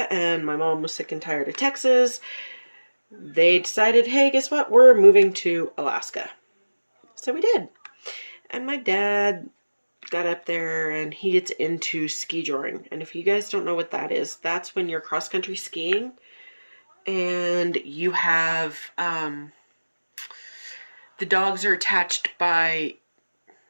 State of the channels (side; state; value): both; inverted; correlation -1.00